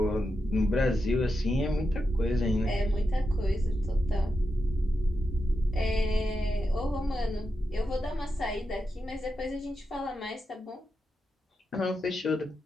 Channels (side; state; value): both; normal; correlation 0.87